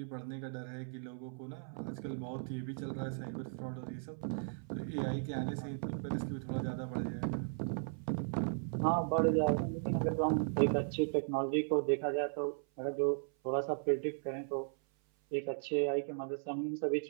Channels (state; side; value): silent; left; 53 dB below the other